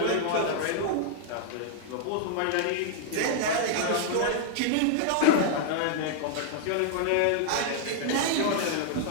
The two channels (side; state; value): both; different; correlation -0.01